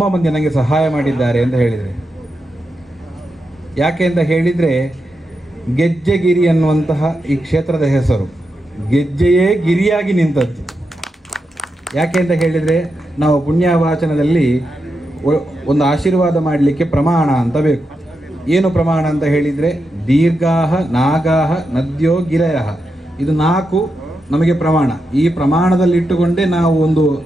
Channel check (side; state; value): both; normal; correlation 0.87